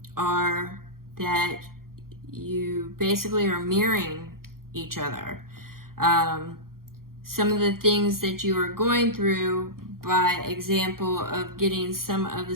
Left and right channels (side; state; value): left; late; 0.92 ms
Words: are that you basically are mirroring each other. Some of the things that you are going through, by example of getting some of the